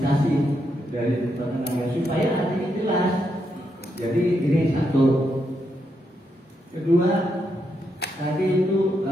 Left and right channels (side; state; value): both; normal; correlation 0.81